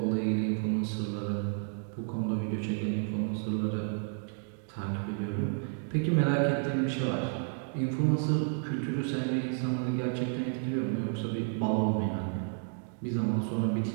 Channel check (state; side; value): silent; left; 57 dB below the other